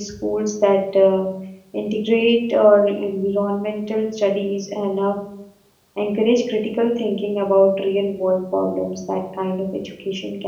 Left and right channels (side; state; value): both; identical; correlation 1.00